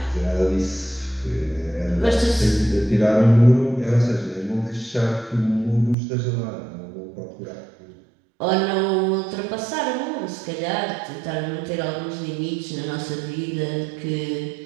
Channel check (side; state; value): left; drops out; at 6.0 s